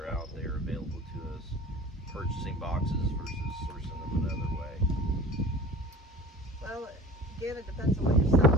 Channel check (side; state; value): both; normal; correlation 0.41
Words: out there available to us. Purchasing boxes versus sourcing them another way. Well, again, it depends on what you're